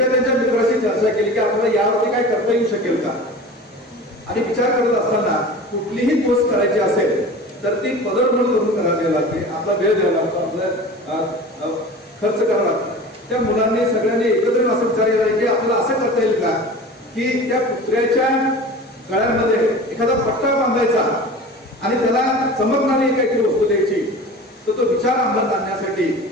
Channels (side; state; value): both; normal; correlation 0.37